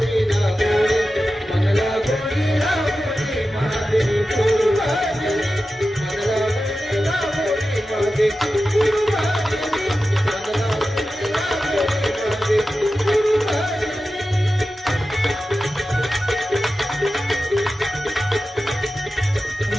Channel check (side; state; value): both; normal; correlation 0.93